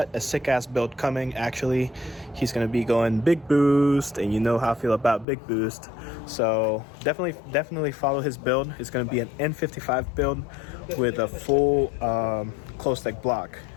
a sick ass build coming. Actually, he's gonna be going big boost, and you know how I feel about big boost. So definitely follow his build. It's gonna be an N55 build with a full closed leg block.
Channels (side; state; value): right; drops out; at 5.2 s